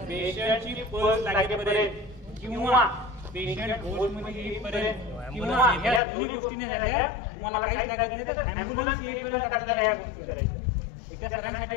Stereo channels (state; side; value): drops out; right; at 6.0 s